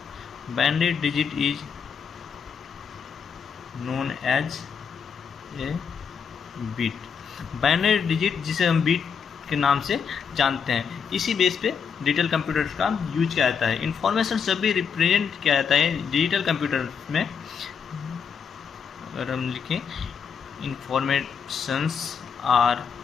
binary digit is known as a bit. Binary digit जिसे हम बिट के नाम से जानते हैं, इसी बेस पे डिजिटल कंप्यूटर का यूज किया जाता है। इंफॉर्मेशन सब भी रिप्रेजेंट किया जाता है डिजिटल कंप्यूटर में। अगर हम लिखें informations are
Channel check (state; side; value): quieter; right; 6.6 dB